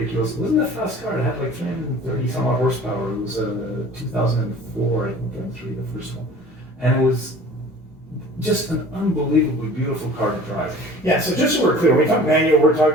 It wasn't a fast car. It had like 330 some odd horsepower. It was a 2004, I think, M3, the first one. And it was just an unbelievably beautiful car to drive. Yeah, so just so we're clear, when we talk manual, we're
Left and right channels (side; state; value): both; normal; correlation 0.45